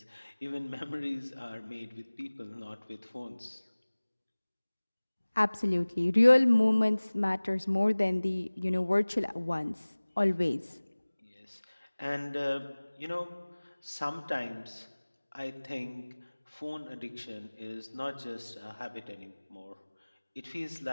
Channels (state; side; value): inverted; both; correlation -1.00